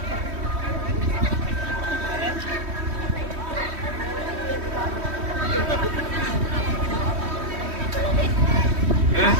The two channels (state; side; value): late; left; 3.1 ms